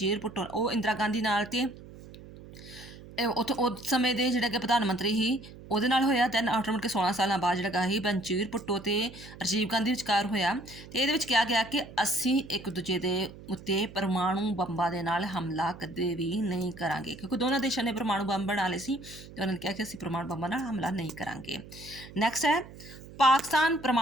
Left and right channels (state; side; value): noise; right; hum, 17 dB below the sound